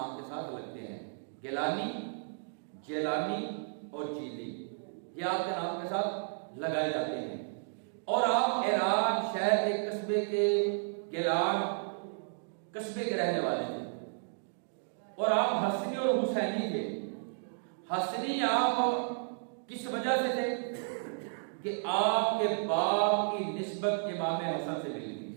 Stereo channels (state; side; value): silent; left; digital silence